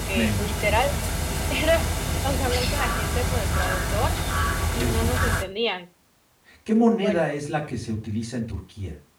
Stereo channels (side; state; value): both; identical; correlation 1.00